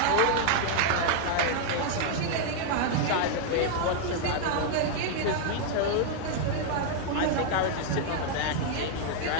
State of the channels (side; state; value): both; different; correlation 0.00